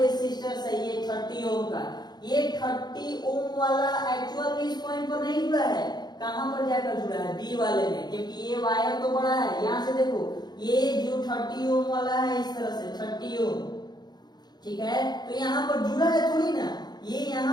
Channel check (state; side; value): late; right; 0.20 ms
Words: है ये 30 ओम का, ये 30 ओम वाला एक्चुअल में इस पॉइंट पर नहीं जुड़ा है। कहां पर जाकर जुड़ा है? बी वाले में, क्योंकि ये वायर तो बड़ा है। यहां से देखो, ये जो 30 ओम वाला है इस तरह से 30 ओम, ठीक है, तो यहाँ पर जुड़ा है थोड़ी ना, ये